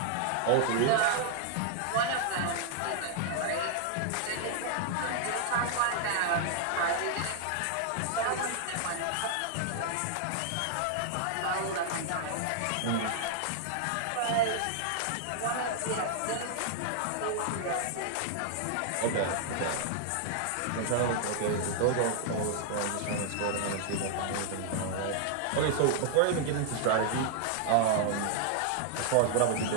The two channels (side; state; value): both; different; correlation 0.00